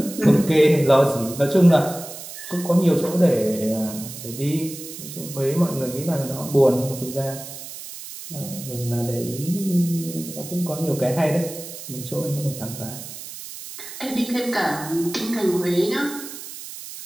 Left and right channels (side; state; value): right; noise; hiss, 12 dB below the sound